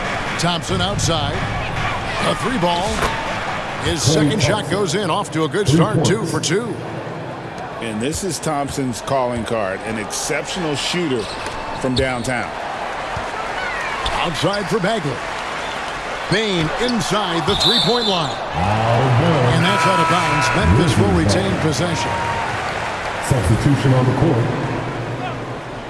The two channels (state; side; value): identical; both; correlation 1.00